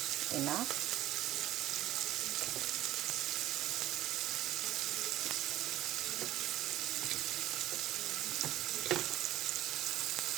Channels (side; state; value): left; quieter; 14.5 dB